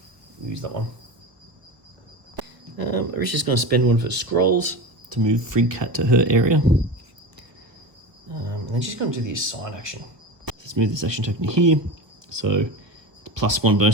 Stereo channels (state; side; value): late; left; 1.2 ms